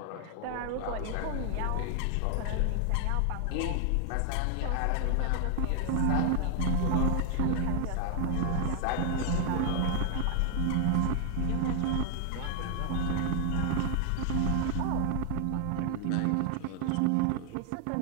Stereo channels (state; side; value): different; both; correlation 0.00